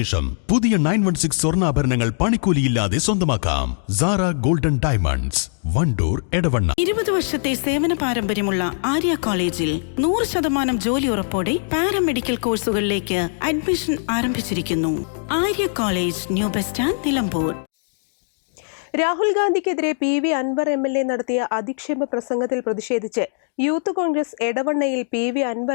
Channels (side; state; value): right; silent; digital silence